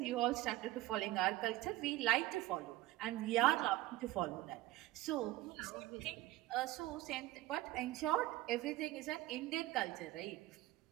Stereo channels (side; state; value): left; quieter; 16.6 dB